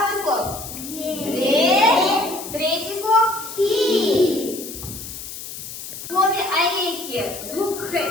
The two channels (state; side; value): noise; left; hiss, 10 dB below the sound